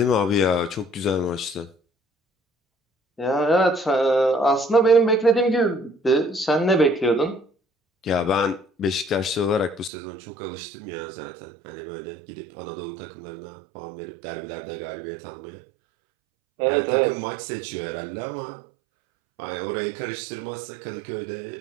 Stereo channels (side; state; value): left; drops out; at 9.9 s